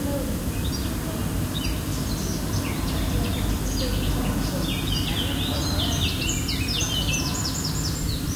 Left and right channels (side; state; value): both; identical; correlation 1.00